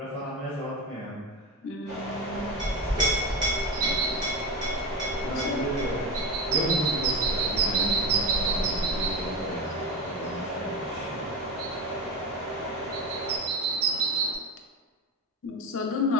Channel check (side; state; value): both; normal; correlation 0.19